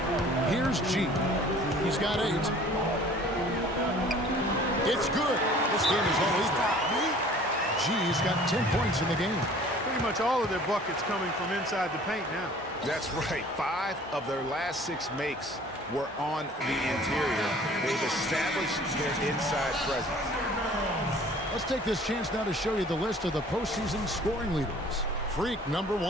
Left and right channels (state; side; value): normal; both; correlation 0.50